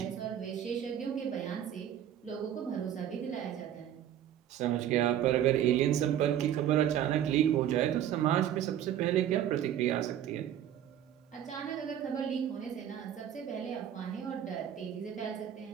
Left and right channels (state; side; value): quieter; left; 10.6 dB